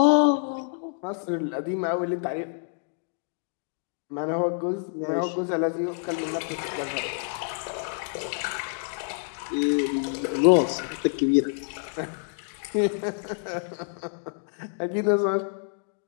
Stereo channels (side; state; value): right; silent; digital silence